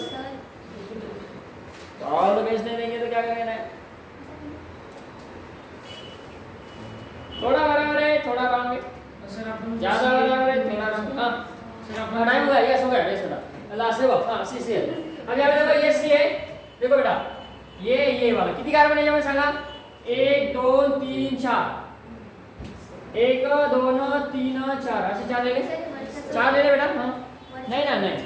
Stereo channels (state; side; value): identical; both; correlation 1.00